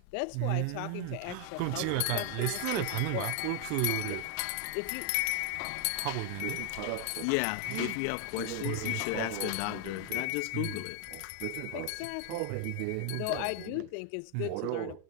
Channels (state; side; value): different; both; correlation 0.00